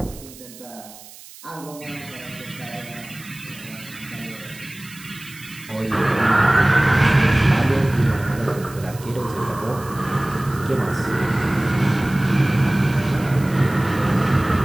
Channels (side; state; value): right; noise; hiss, 19 dB below the sound